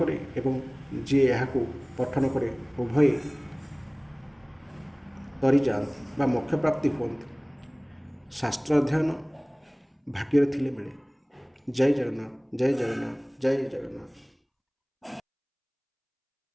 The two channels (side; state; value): both; identical; correlation 1.00